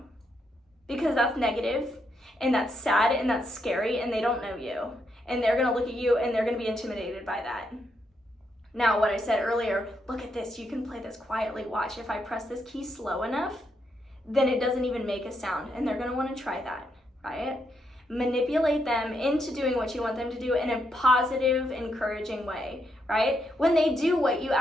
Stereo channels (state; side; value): normal; both; correlation 0.79